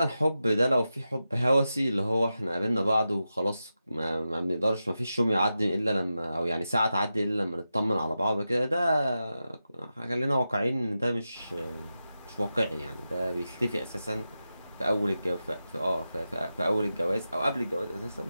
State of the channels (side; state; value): both; inverted; correlation -0.91